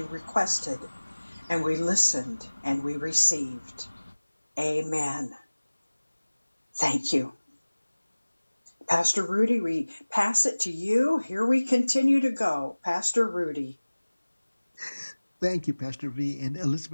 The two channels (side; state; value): both; inverted; correlation -1.00